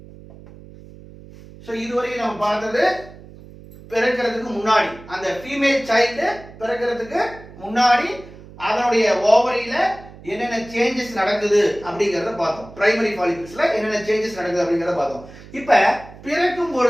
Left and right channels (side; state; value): right; noise; hum, 19 dB below the sound